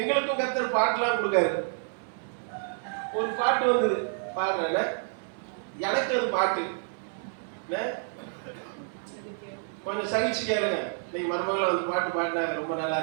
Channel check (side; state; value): left; silent; digital silence